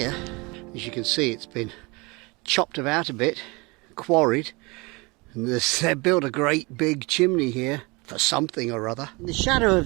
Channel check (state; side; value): quieter; left; 26.2 dB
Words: As you can see, it's been chopped about a bit, quarried, and they've built a great big chimney here for something or other. In the shadow of